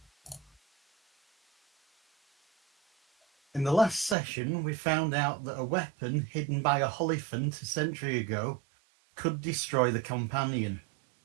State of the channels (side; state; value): left; drops out; at 4.2 s